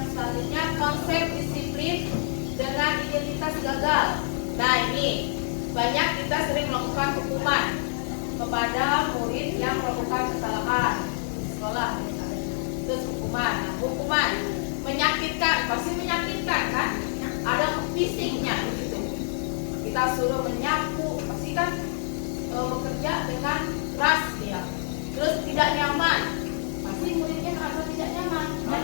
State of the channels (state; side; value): silent; right; 58 dB below the other